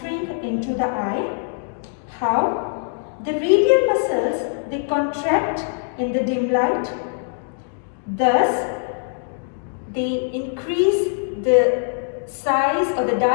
into the eye. How? The radial muscles, they contract in the dim light. Thus, they increase the size or the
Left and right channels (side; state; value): right; silent; digital silence